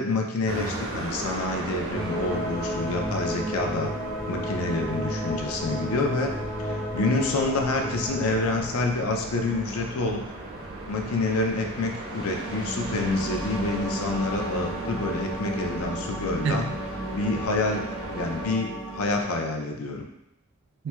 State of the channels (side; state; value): both; normal; correlation 0.34